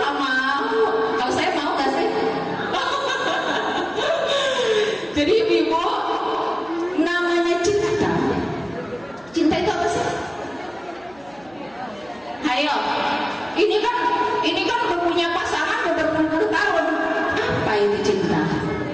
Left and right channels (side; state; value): right; noise; hum, 27 dB below the sound